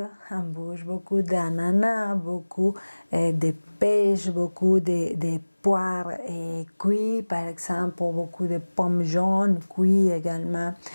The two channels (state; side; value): inverted; both; correlation -1.00